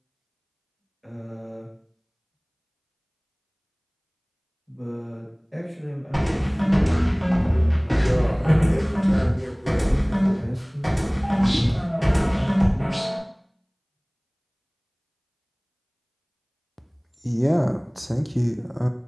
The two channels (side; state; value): both; identical; correlation 1.00